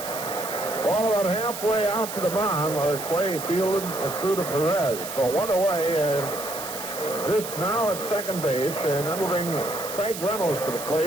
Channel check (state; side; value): noise; right; hiss, 9 dB below the sound